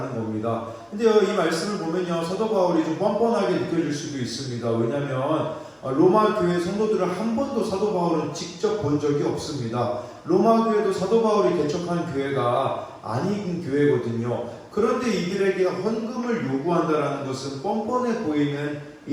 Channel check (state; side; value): identical; both; correlation 1.00